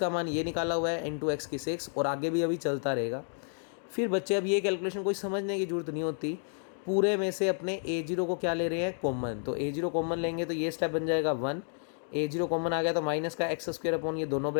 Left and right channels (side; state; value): right; silent; 57 dB below the other